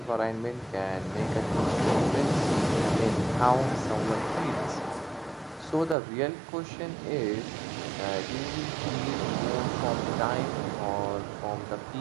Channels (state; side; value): drops out; left; at 6.0 s